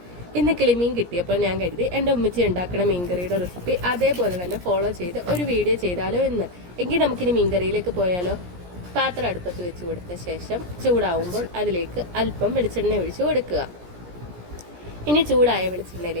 ഇന്ന് കിളിമീൻ കിട്ടിയപ്പോൾ ഞാൻ കരുതി എൻ്റെ ഉമ്മിച്ചി ഉണ്ടാക്കുന്ന മീൻകറിയുടെ റെസിപ്പി അതേപോലെ തന്നെ ഫോളോ ചെയ്ത് ഒരു വീഡിയോ ചെയ്താലോ എന്ന്. എങ്കിൽ നമുക്കിനി മീൻകറിയിലേക്ക് പോയാലോ. പാത്രം അടുപ്പത്ത് വെച്ച് കൊടുത്ത ശേഷം ചൂടാവുമ്പോൾ അതിലേക്ക് അല്പം വെളിച്ചെണ്ണ ഒഴിച്ച് കൊടുക്കുക. ഇനി ചൂടായ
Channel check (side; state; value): left; late; 17 ms